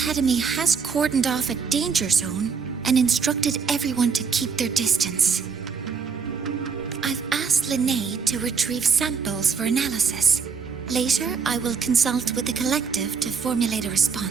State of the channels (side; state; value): left; quieter; 5.8 dB